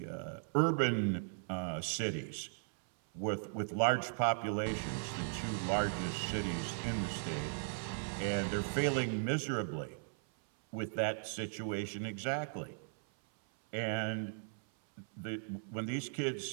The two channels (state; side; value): silent; left; 53 dB below the other